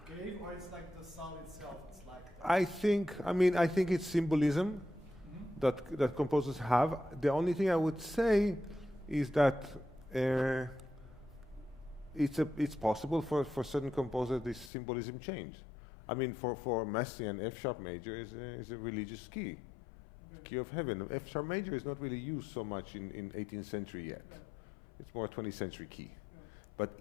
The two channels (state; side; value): drops out; right; at 14.7 s